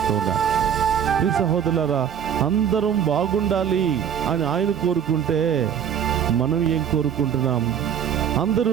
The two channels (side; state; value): left; quieter; 8.6 dB